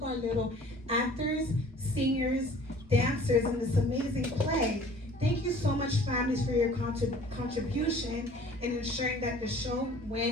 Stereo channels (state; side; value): normal; both; correlation 0.50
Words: our little actors, singers, dancers in this amazing play. Thank you so much, families, for your contribution in ensuring that the show